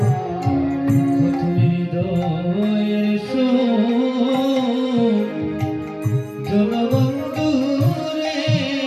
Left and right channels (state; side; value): identical; both; correlation 1.00